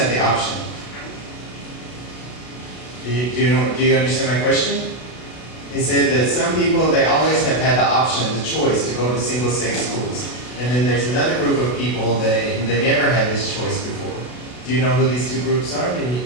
the option? Do you understand my question? He said that some people, they always have had the option, the choice to go to single-sex schools. And then there's another group of people that they never had this choice before. Do you know who these two groups are? Did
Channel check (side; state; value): right; late; 32 ms